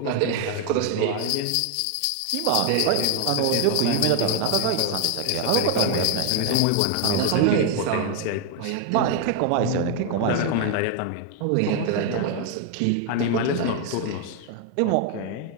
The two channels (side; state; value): both; different; correlation 0.01